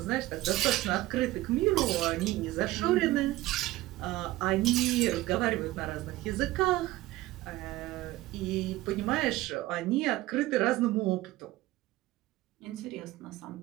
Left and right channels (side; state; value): left; quieter; 17.4 dB